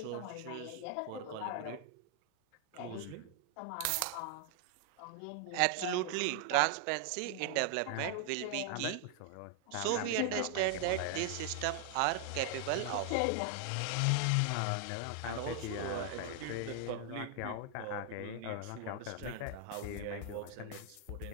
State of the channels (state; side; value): different; both; correlation 0.00